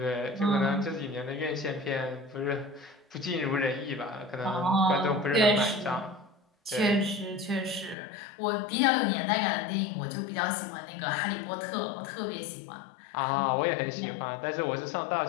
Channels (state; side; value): drops out; right; at 8.0 s